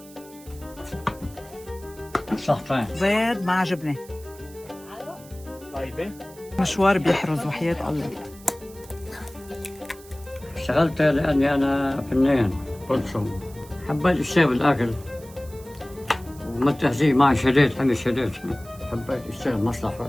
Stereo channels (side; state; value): right; noise; hiss, 22 dB below the sound